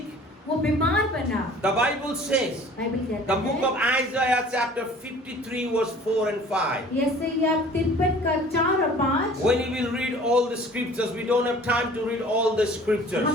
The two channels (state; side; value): normal; both; correlation 0.49